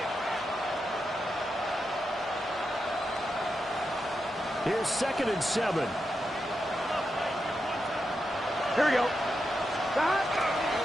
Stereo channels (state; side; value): normal; both; correlation 0.87